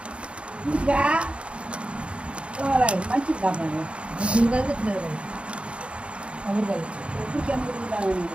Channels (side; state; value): left; late; 0.059 ms